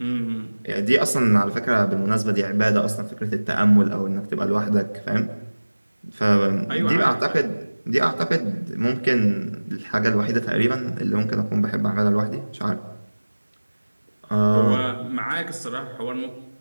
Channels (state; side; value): inverted; both; correlation -1.00